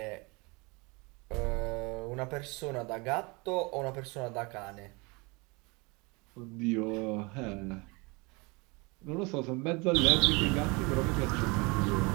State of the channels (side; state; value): left; quieter; 27.3 dB